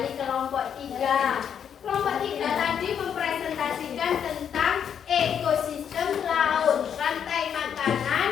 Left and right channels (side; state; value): right; quieter; 8.2 dB